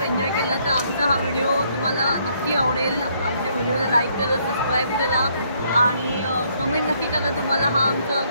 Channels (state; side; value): inverted; both; correlation -0.69